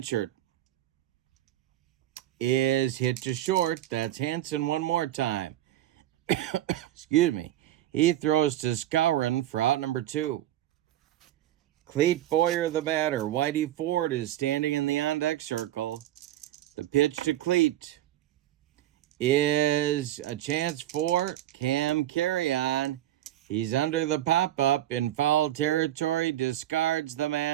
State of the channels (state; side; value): quieter; left; 13.4 dB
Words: is hit to short. That's Hansen one more time. Excuse me. He throws to Skowron for out number 2. Cleet Boyer, the batter. Whitey Ford is standing in the on-deck circle. The pitch to Cleet is a chance for Cam Carry-On. He's under the pop-up in foul territory, discards the